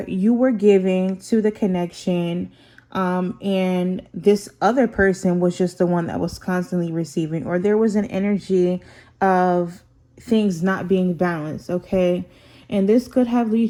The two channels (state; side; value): identical; both; correlation 1.00